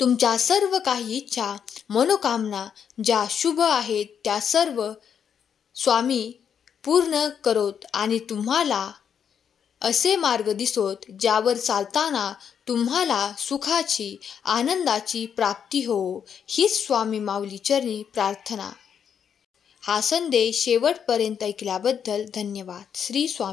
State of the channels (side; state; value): right; quieter; 7.8 dB